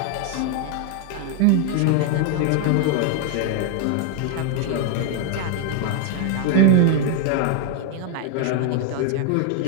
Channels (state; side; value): different; both; correlation 0.00